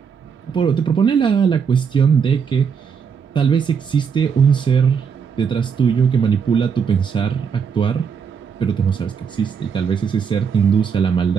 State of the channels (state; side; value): quieter; left; 6.5 dB